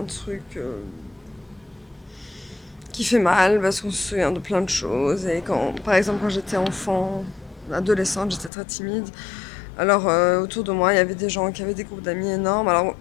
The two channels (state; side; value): drops out; right; at 8.5 s